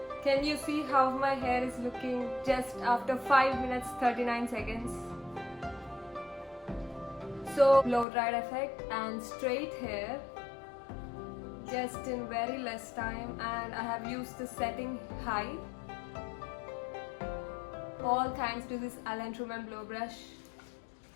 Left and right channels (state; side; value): drops out; right; at 8.1 s